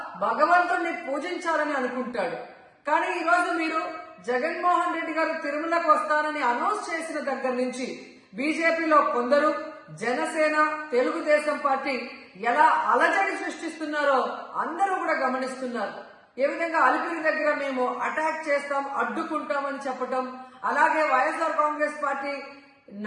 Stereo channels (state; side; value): identical; both; correlation 1.00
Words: భగవంతుడిని పూజించాలని అనుకుంటాడు. కానీ ఈ రోజు మీరు జగన్మోహన్ రెడ్డి గారు తిరుమలకు వస్తానని అనౌన్స్ చేసిన దగ్గర నుంచి బీజేపీలో కొందరు, జనసేన, తెలుగుదేశం పార్టీ ఎలా అలజడి సృష్టిస్తున్నారో అందరూ కూడా గమనిస్తున్నారు. ఏ విధంగా అలిపిరి దగ్గర మేము అటాక్ చేస్తాం, అడ్డుకుంటామని చెప్పటం, అలాగే వైఎస్ఆర్ కాంగ్రెస్ పార్టీ